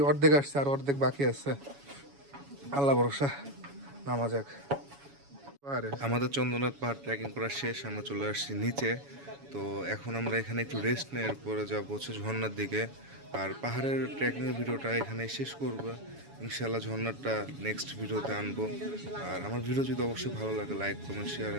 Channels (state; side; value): late; left; 7.1 ms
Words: অর্ধেক আসছে, আর অর্ধেক বাকি আছে। আল্লাহ ভরসা, নামা যাক। আমাদের চন্দ্রনাথ পাহাড় ট্রেকিং করা শেষ, আমরা চলে আসছি নিচে। তো এখন আমরা এখানে একটু রেস্ট নিয়ে এরপরে যাবো হচ্ছে ঝর্ণার দিকে। আর পাহাড়ের ট্রেকিংয়ের ভিডিওটা এখানে শেষ করবো ইনশাল্লাহ। ঝর্ণাটা নেক্সট ভিডিওতে আনবো। আর আমার ভিডিও যদি অবশ্যই ভালো লাগে, like comment share